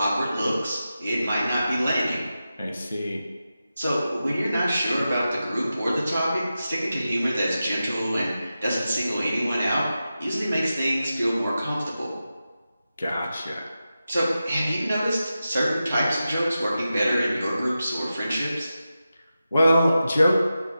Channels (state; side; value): inverted; both; correlation -0.92